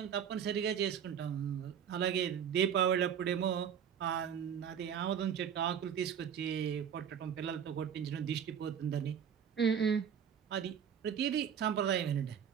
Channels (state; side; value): quieter; left; 8.2 dB